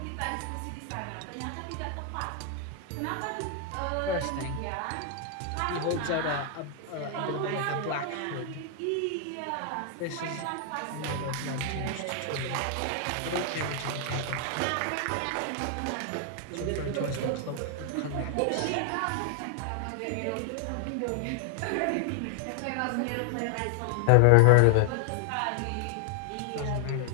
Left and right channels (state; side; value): different; both; correlation 0.00